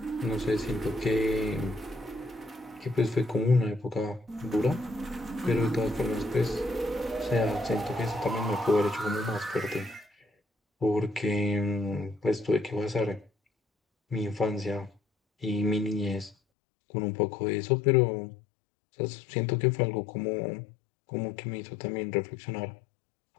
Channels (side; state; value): right; drops out; at 16.4 s